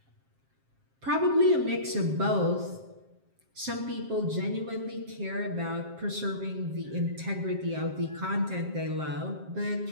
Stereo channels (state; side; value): late; left; 7.5 ms